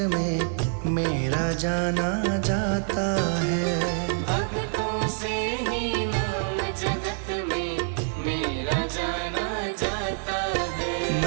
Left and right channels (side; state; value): left; silent; 61 dB below the other